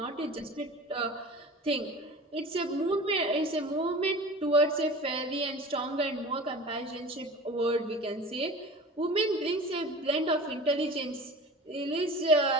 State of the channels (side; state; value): both; normal; correlation 0.38